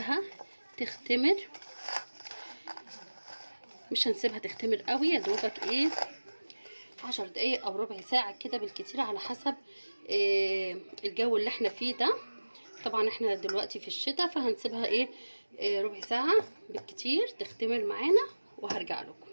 تختمر. مش هنسيبها تختمر قوي، يا دوبك ايه 10 دقايق او ربع ساعه كده بالكتير، على حسب الجو اللي احنا فيه ده. طبعا احنا دلوقتي في الشتاء، فهنسيبها ايه ربع ساعه بالكتير تختمر معانا، وهرجع لكم.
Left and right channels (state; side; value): inverted; both; correlation -1.00